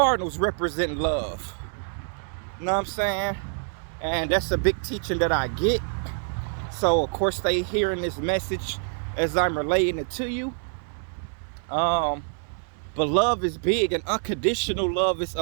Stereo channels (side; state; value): left; silent; 58 dB below the other